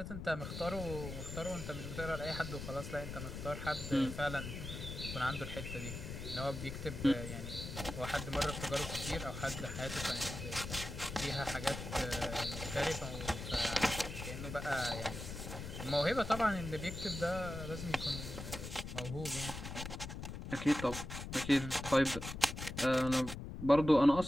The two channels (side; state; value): left; noise; rumble, 7 dB below the sound